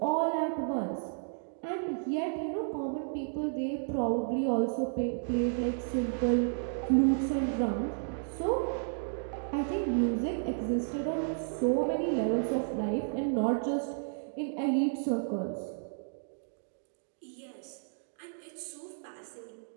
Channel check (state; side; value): silent; left; digital silence